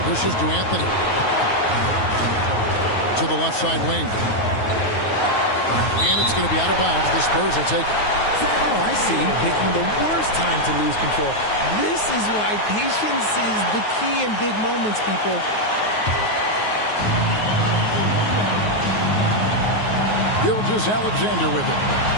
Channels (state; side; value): late; right; 9.4 ms